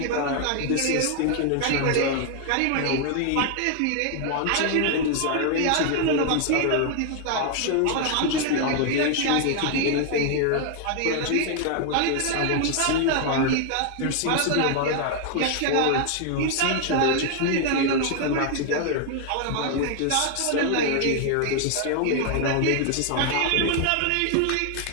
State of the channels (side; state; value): both; different; correlation 0.00